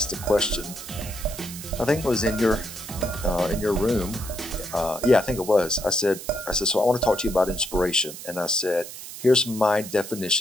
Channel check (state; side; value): noise; right; hiss, 12 dB below the sound